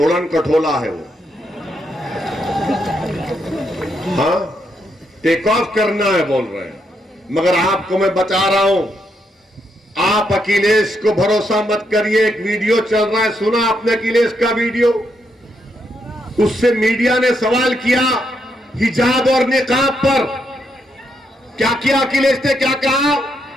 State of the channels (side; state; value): both; normal; correlation 0.79